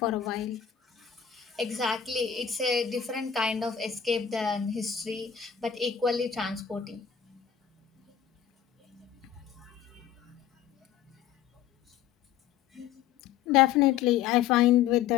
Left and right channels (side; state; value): right; quieter; 8.8 dB